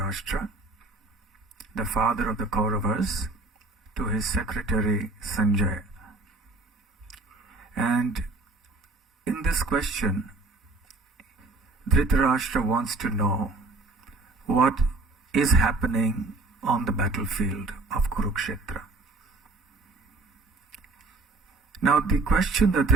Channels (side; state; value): left; quieter; 3.4 dB